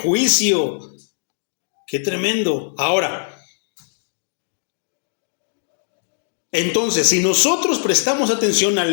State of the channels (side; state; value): right; silent; digital silence